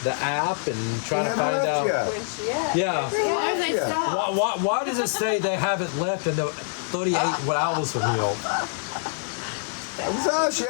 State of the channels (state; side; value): silent; right; digital silence